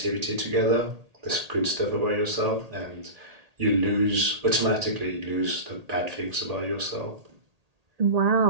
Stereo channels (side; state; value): left; late; 1.8 ms